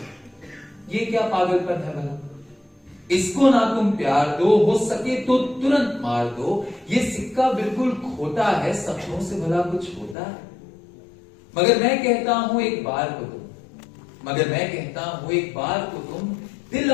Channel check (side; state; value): right; drops out; at 10.2 s